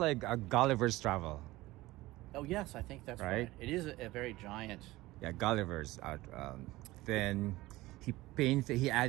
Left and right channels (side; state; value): left; quieter; 18.7 dB